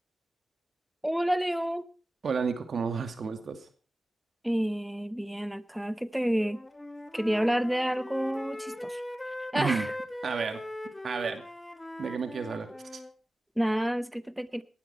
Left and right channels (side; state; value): both; normal; correlation 0.96